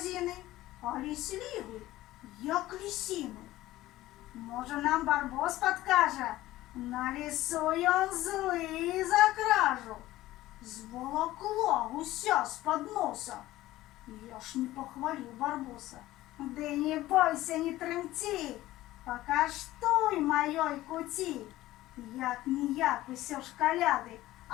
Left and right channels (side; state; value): right; quieter; 16.1 dB